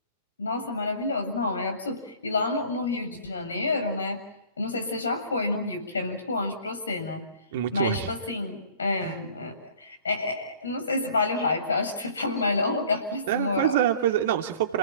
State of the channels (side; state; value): both; inverted; correlation -0.48